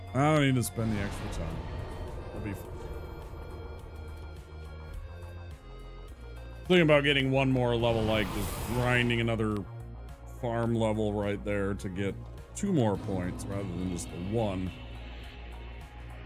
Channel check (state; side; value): identical; both; correlation 1.00